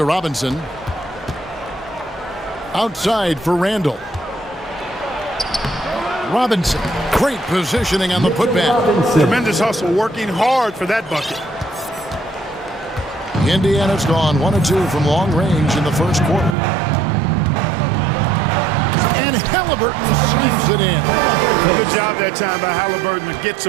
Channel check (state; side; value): drops out; left; at 16.6 s